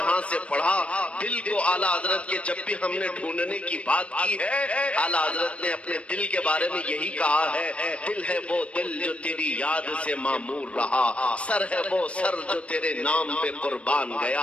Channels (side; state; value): right; late; 0.062 ms